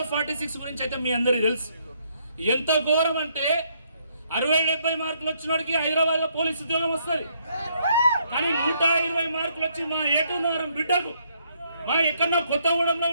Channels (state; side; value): inverted; both; correlation -0.71